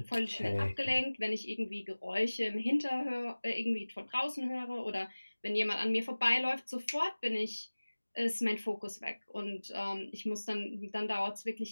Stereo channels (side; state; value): both; inverted; correlation -1.00